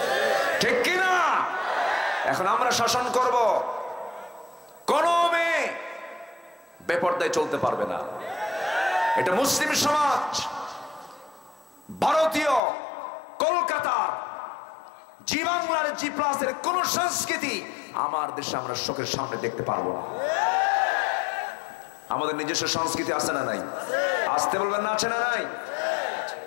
ঠিক কিনা? এখন আমরা শাসন করব। কোন মেয়ে বেপর্দায় চলতে পারবে না। এটা মুসলিম সমাজ, ভারতীয়, কলকাতার, জি বাংলার, G+ কোন সংস্কৃতি আমার দেশে আমরা চোখের সামনে দেখতে পারবো না। আমাদের নিজস্ব সংস্কৃতি আছে না নাই? আসতে বলবেন না, আছে না নাই?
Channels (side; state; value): right; drops out; at 12.6 s